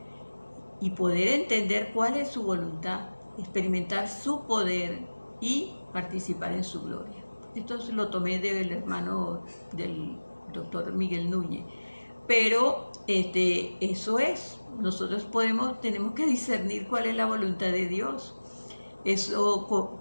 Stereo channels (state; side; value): inverted; both; correlation -1.00